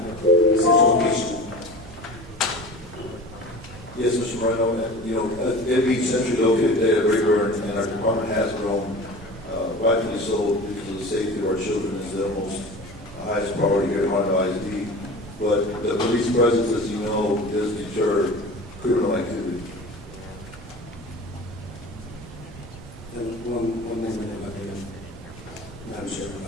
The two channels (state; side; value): noise; right; hum, 24 dB below the sound